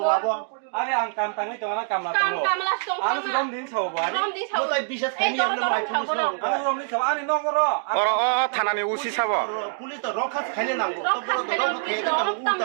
ngabo Ari ang kam tangi to na kam na to. কাম লাস তো Ano si Rom din sa ba? রম দি ছাও mo tai bisas khani amna mai pulis Ano Rom din sa ani no goro. Oro thanani usi sabo. pulis to rokha khani nango to boro to rokha khani nango uta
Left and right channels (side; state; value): left; silent; digital silence